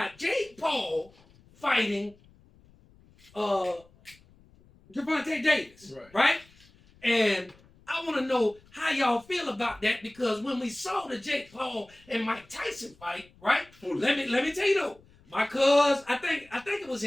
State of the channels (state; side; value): noise; left; rumble, 28 dB below the sound